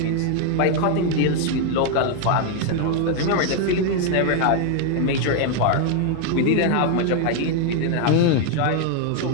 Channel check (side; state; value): both; different; correlation 0.00